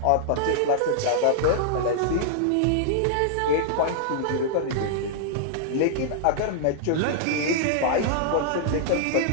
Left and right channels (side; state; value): both; different; correlation -0.01